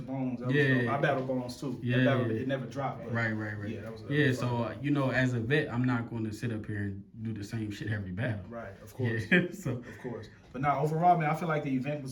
Bones. That was yeah, dope. I battled Bones too. Yeah, battle, it never dropped. Right. Yeah, that was. So you know, as a vet, I'm not going to sit up here and do the same shit every battle. Right, of course. So of course. But now overall, man, I feel like the event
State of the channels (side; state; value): both; identical; correlation 1.00